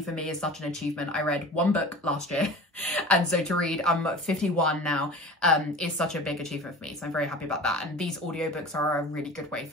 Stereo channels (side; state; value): both; normal; correlation 0.38